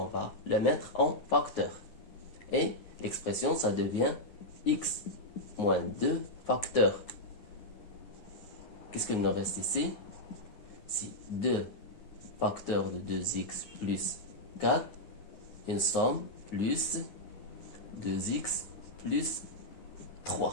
va le mettre en facteur. Et l'expression, ça devient x moins 2 facteur. Qu'est-ce qu'il nous reste ici? C'est 2 facteurs de 2x plus 4, une somme plus 2x plus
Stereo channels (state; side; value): late; right; 9.6 ms